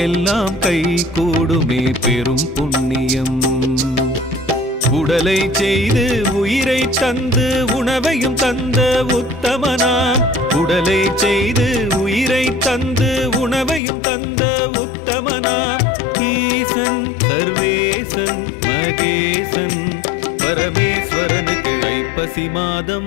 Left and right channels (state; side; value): drops out; right; at 13.8 s